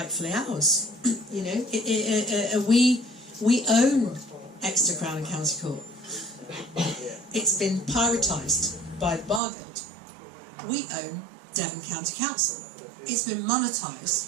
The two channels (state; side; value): drops out; left; at 9.4 s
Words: ours. We own Exeter Crown County Court. It's been privatised by the Bar Guild. We own Devon County Council. It's been